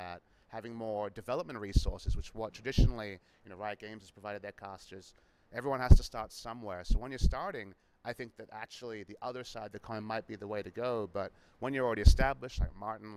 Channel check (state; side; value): identical; both; correlation 1.00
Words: Having more development resources, which what traditionally Riot Games has provided their casters. Everyone has to start somewhere. So when you're starting, I think that actually the other side of the coin might be the way to go. But when you're already established, like Martin,